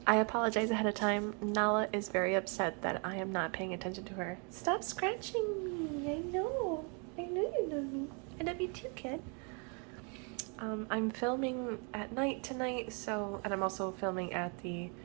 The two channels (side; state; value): left; quieter; 35.9 dB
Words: I apologize ahead of time. Nala is very upset that I am not paying attention to her. Stop scratching me. I know you love me. I love you too, kid. I'm filming at night tonight, and I'm also filming at the